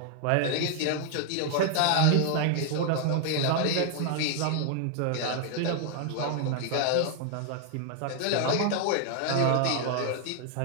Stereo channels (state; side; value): different; both; correlation 0.00